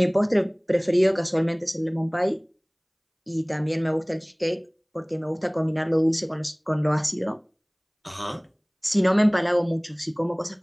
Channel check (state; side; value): identical; both; correlation 1.00